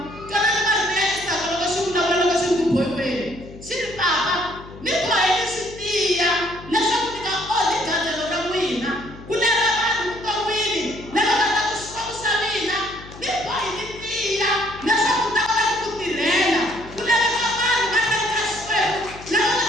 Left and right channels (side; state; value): left; noise; hum, 17 dB below the sound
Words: twanani marito ya Isaka loko xi vulavula loko xi ri ku bohiweni xi ri papa ni boheni swi tiya leswaku ni nga onhi gandzelo ra n'wina ku lava vanhu vuton'wini lava nga ta ku xikwembu xa mina ni bohi ni tiya leswaku ni ta kota ku tirhela ku laveka vanhu va tlanga ka xikwembu lava nga